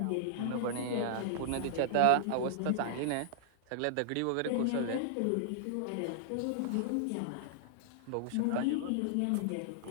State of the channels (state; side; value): different; both; correlation -0.02